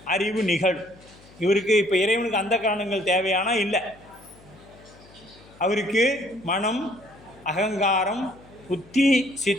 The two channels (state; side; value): noise; left; hum, 24 dB below the sound